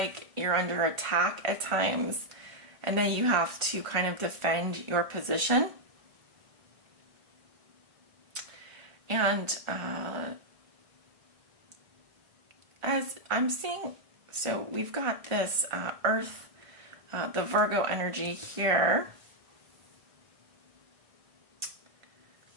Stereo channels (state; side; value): late; left; 1.8 ms